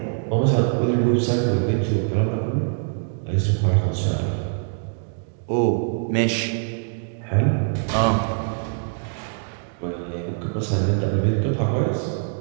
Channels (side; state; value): left; silent; 63 dB below the other